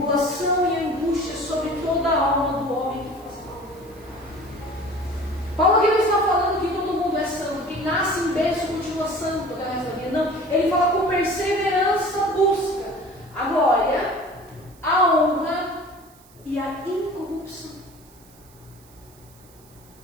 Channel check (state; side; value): noise; right; hiss, 27 dB below the sound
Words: e angústia sobre toda a alma do homem que faz mal. Paulo aqui não está falando que todo mundo é santo, quem nasce em berço continua santo até o resto da vida. Não, ele fala: com perseverança busca a glória, a honra e a incorrupção.